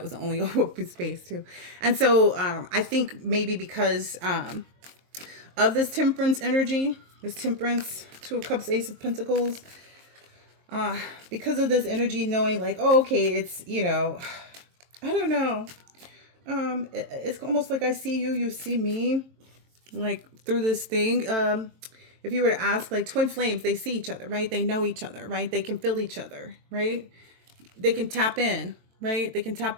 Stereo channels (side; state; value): left; late; 23 ms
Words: was the only open space too. And so I think maybe because of this temperance energy, this temperance, Two of Cups, Ace of Pentacles, because of this energy, knowing like, oh, okay, it's, I don't know. It's almost like I see you, you see me, like through this thing. If you were to ask, like, twin flames, they see each other, right? They know each other, right? They can feel each other, right? They can tap in, right? They can